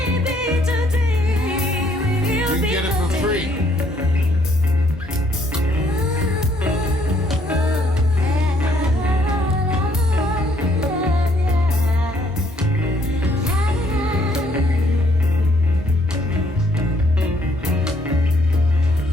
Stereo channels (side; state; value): both; normal; correlation 0.67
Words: You can get it for free.